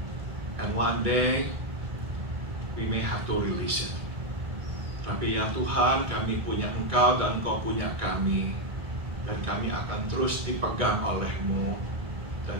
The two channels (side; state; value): left; late; 2.2 ms